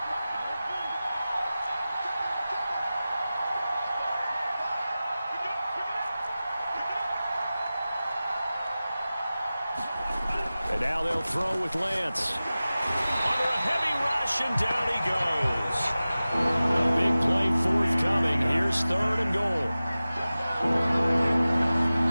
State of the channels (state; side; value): inverted; both; correlation -0.96